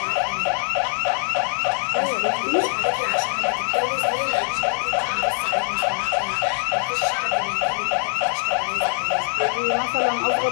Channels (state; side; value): silent; right; digital silence